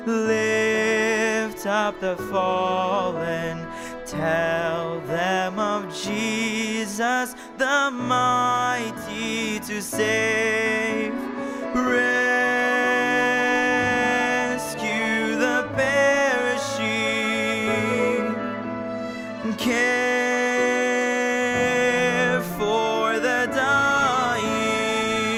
lift up the fallen, tell them of Jesus the mighty to save. Rescue the perishing, care for the dying.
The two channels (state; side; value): identical; both; correlation 1.00